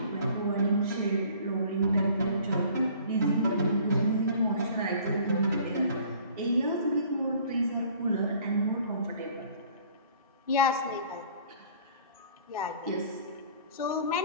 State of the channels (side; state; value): both; inverted; correlation -0.52